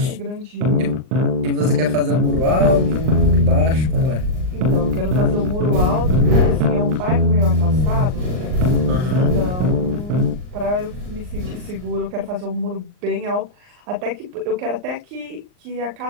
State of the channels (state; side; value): late; left; 39 ms